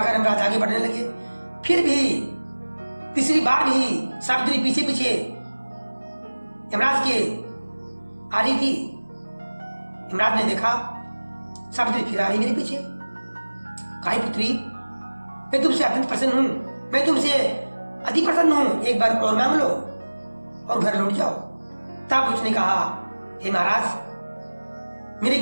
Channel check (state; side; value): inverted; both; correlation -1.00